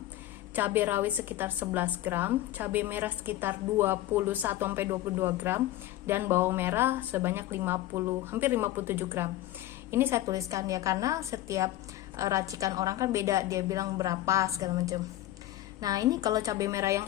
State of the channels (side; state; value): right; quieter; 14.8 dB